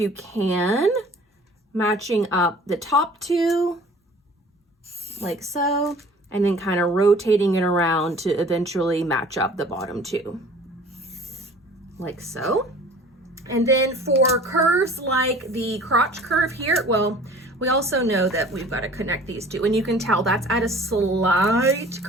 can, matching up the top two, like so, and then kind of rotating it around to eventually match up the bottom two, like so. And then for curves like the crotch curve here, well, we also know that we've got to connect these two, and you can tell that's at a slight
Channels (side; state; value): both; normal; correlation 0.48